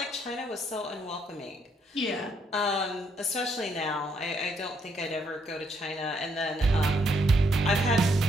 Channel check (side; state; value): both; normal; correlation 0.73